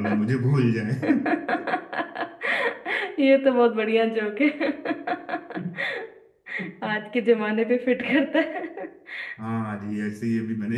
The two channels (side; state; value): both; identical; correlation 1.00